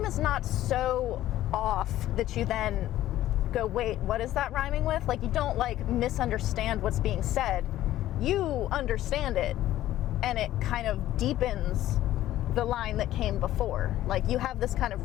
is not so off that you then go, wait, what is that rhyming with? Like you don't like misunderstand what's being said. You understand it, and it kind of deepens the line that came before. Like you have this kind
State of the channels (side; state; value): right; quieter; 13.8 dB